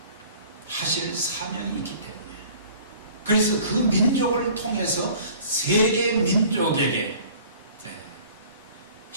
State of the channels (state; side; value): inverted; both; correlation -0.49